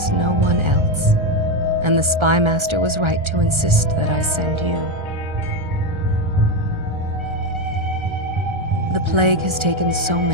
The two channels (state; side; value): late; left; 1.3 ms